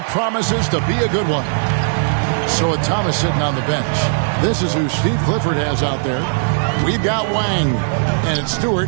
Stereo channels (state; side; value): silent; left; digital silence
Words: promises to be a good one. So with Thomas sitting on the bench, this is who Steve Clifford has out there. We've got Wang, and it's